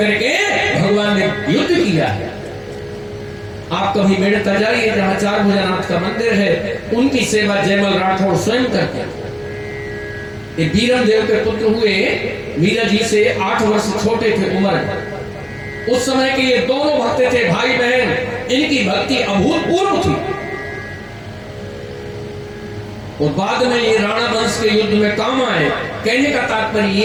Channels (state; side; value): identical; both; correlation 1.00